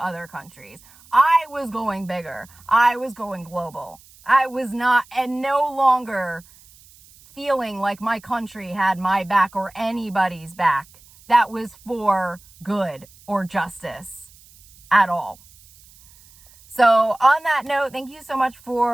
countries. I was going bigger. I was going global. I was not, and no longer feeling like my country had my back or anybody's back that was for good or justice at all. So on that note, thank you so much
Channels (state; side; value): noise; right; hiss, 26 dB below the sound